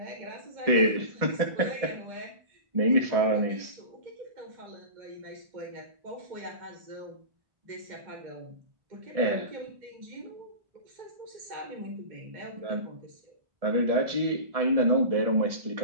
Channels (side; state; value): left; late; 1.7 ms